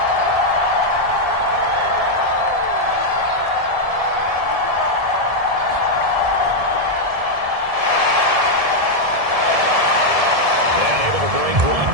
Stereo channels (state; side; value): late; left; 1.7 ms